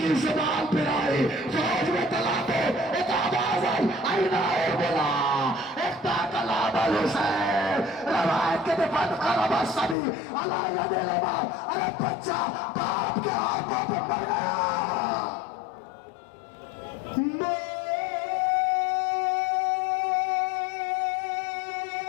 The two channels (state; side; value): drops out; right; at 10.0 s